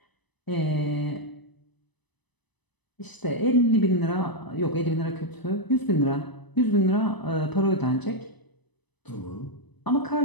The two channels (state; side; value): late; right; 1.0 ms